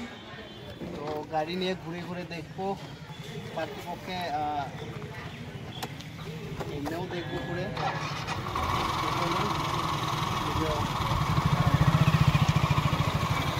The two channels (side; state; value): both; identical; correlation 1.00